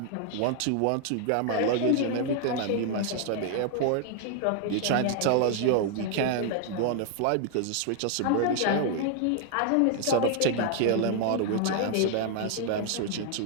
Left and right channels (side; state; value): both; different; correlation 0.00